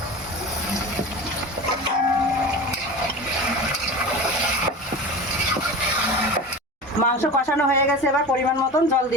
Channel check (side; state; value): both; normal; correlation 0.31